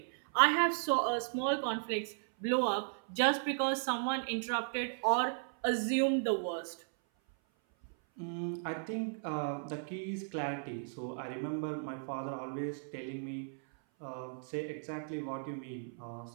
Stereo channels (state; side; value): silent; left; 54 dB below the other